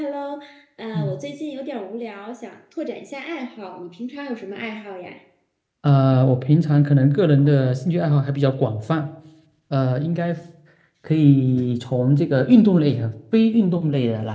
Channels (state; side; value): identical; both; correlation 1.00